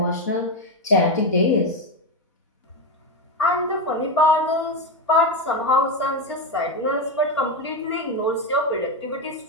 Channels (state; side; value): normal; both; correlation 0.10